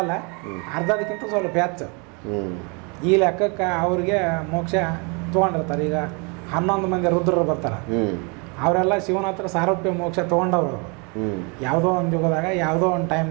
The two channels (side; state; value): left; quieter; 32.3 dB